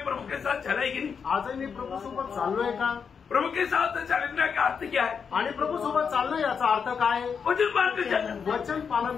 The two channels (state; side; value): quieter; right; 6.3 dB